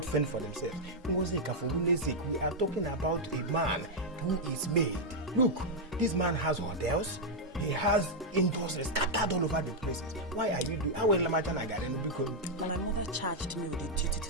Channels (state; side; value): normal; both; correlation -0.03